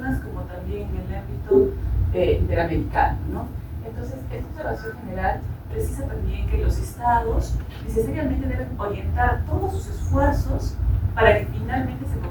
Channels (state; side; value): identical; both; correlation 1.00